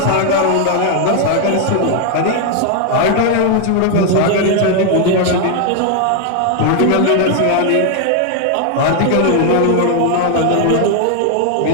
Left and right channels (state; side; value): different; both; correlation 0.00